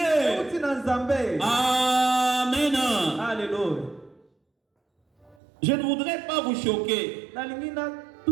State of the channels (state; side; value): drops out; left; at 5.4 s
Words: Amen. Alléluia. Je ne voudrais pas vous choquer.